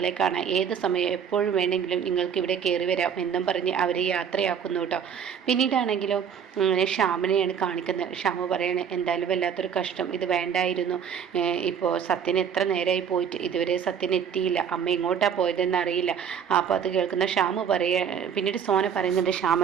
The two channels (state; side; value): quieter; left; 7.7 dB